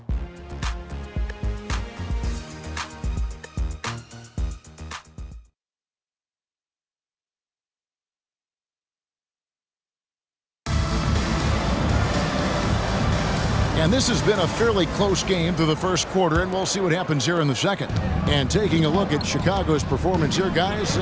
And this has been a fairly close game through the first quarter, and we'll see what happens here in the second. And taking a look at Chicago's performance here, guys,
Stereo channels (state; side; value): identical; both; correlation 1.00